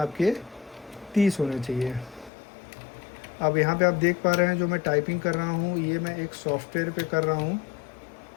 30 होने चाहिए। अब यहाँ पे आप देख पा रहे हैं जो मैं टाइपिंग कर रहा हूँ ये मैं एक सॉफ्टवेयर पे कर रहा हूँ,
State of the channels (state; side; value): drops out; right; at 2.3 s